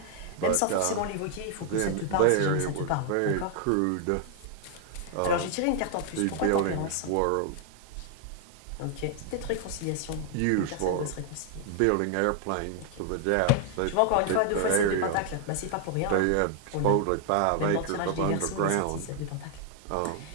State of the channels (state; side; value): different; both; correlation 0.00